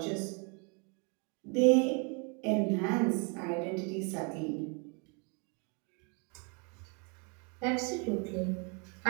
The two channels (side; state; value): left; quieter; 34.8 dB